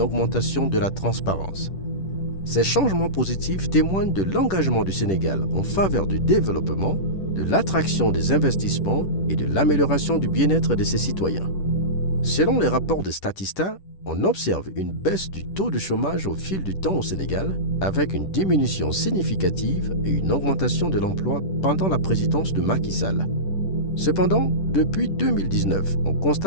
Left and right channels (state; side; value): late; right; 10 ms